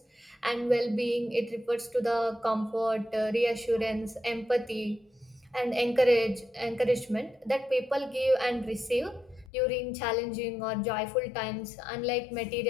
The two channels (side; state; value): right; drops out; at 9.5 s